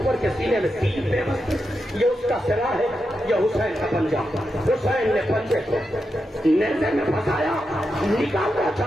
کے سینے میں تین پہ یہ اس کا سرا ہے, یہ حسین کا پنجہ. حسین نے پنجے کو نیزے میں پھنسایا, نکالنا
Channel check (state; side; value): normal; both; correlation 0.87